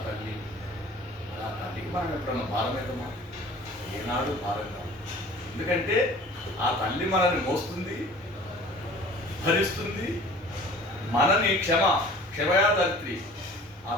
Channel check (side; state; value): both; normal; correlation 0.46